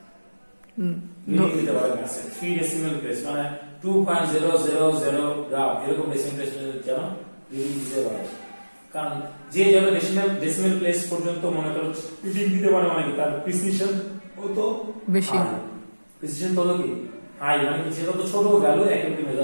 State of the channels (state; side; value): inverted; both; correlation -1.00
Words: দিতে পারে ম্যাসে 3 ডেসিমেল প্লেস মানে 2.000 গ্রাম এরকম ডেসিমেল প্লেস যেন রিডিং দিতে পারে। কারণ যে যত ডেসিমেল প্লেস পর্যন্ত মনে করো রিডিং দিতে পারে মানে তার প্রিসিশন তত বেশি, প্রিসিশন তত কি হাই, মানে কি যত ছোট ভ্যালু অ্যাকুরেটলি